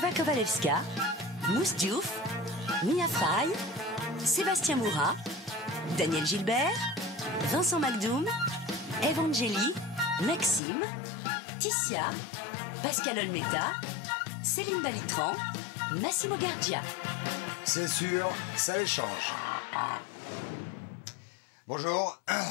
Kowalewska, Mousse Diouf, Mia Frey, Sébastien Moura, Daniel Gilbert, Vincent Macdoum, Evangélie, Maxime, Ticia, Pascal Olmeta, Céline Balitran, Massimo Gardia. C'est sûr, ça les change. Bonjour,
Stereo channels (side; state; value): right; drops out; at 10.6 s